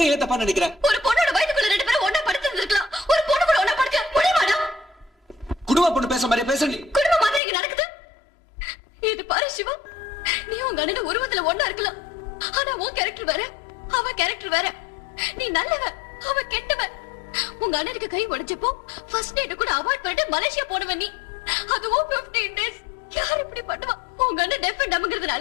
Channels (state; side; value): drops out; right; at 7.4 s